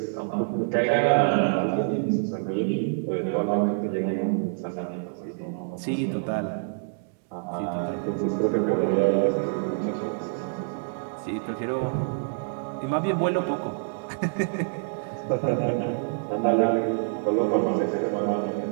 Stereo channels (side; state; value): left; silent; digital silence